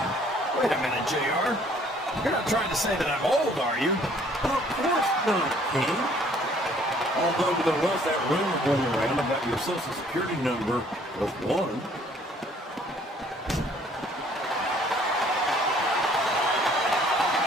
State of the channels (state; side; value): normal; both; correlation 0.59